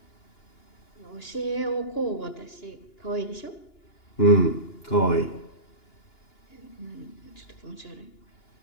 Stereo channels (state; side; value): late; right; 2.9 ms